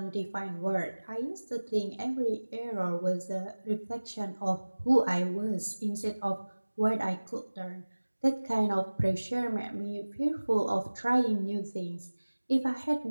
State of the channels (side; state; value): both; inverted; correlation -1.00